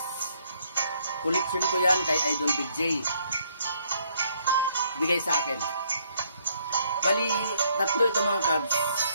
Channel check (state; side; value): inverted; both; correlation -0.67